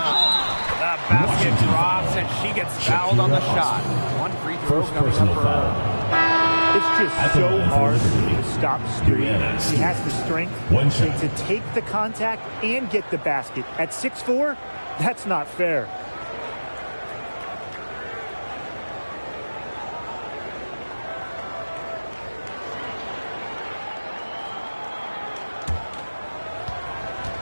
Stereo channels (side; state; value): both; inverted; correlation -1.00